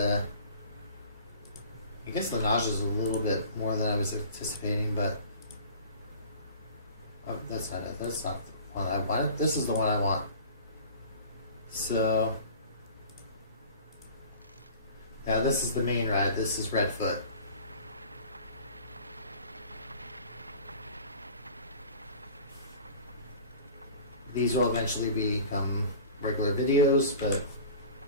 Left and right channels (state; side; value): inverted; both; correlation -0.42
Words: guess the nausea is a little bit more than I was anticipating, but oh, that's not it. That's not the one I wanted. This is the one I want. So now this is the main ride. This is Redfoot. These will eventually become regular videos, but